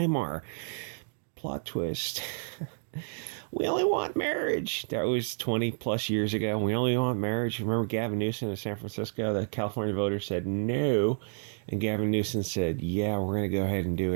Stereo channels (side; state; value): left; silent; digital silence